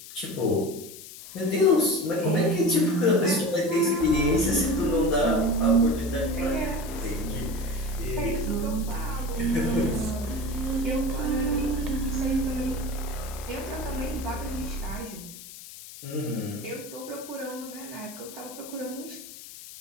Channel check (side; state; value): left; noise; hiss, 15 dB below the sound